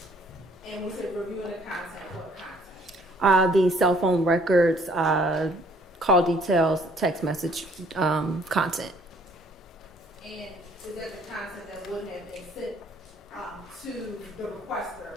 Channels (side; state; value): both; normal; correlation 0.61